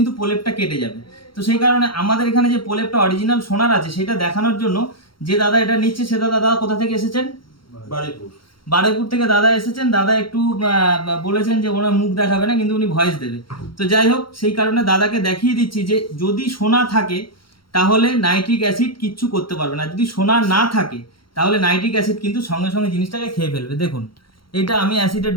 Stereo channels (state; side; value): late; right; 0.73 ms